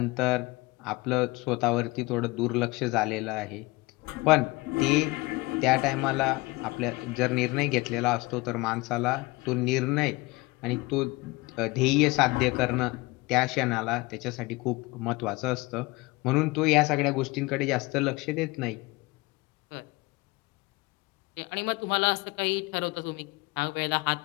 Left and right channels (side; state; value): right; quieter; 22.9 dB